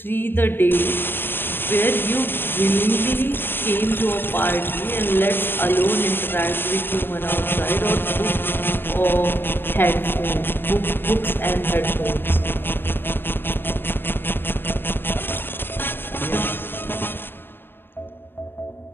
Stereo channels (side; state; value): right; late; 0.10 ms